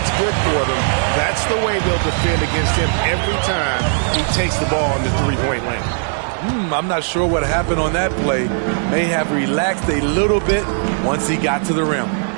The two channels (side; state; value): left; silent; 66 dB below the other